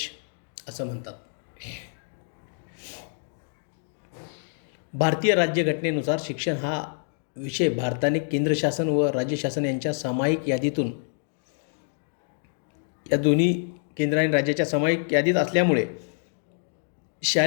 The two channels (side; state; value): right; silent; digital silence